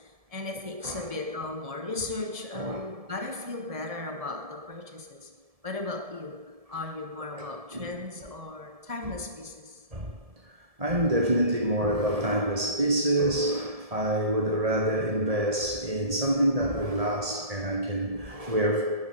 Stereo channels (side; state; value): left; late; 1.7 ms